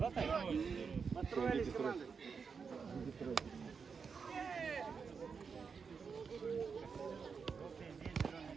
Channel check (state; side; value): quieter; left; 5.7 dB